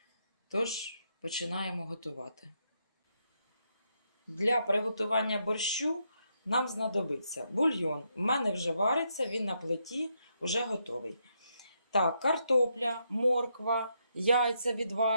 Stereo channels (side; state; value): both; inverted; correlation -0.79